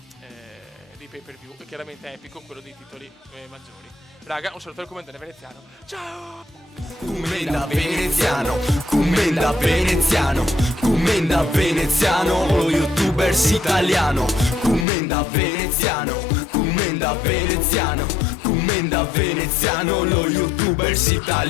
pay per view, e chiaramente epico quello dei titoli maggiori. Raga, un saluto al commentare veneziano, ciao! Commenda veneziano, commenda veneziano, commenda veneziano, lo youtubers italiano, commenda veneziano, commenda veneziano, commenda veneziano, lo youtubers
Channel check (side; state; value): right; drops out; at 14.9 s